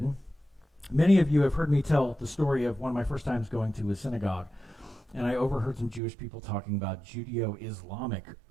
Many of you have heard me tell the story of one of my first times going to a synagogue, and I overheard some Jewish people talking about Judeo-Islamic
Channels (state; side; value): drops out; left; at 6.0 s